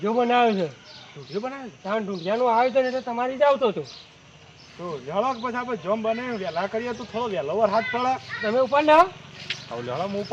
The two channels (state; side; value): identical; both; correlation 1.00